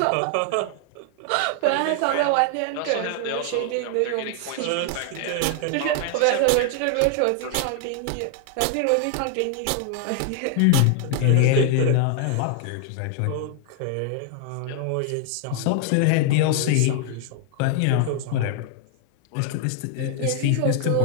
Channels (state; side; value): different; both; correlation 0.00